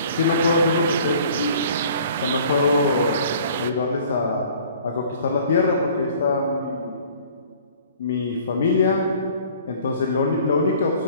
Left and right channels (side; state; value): both; inverted; correlation -0.52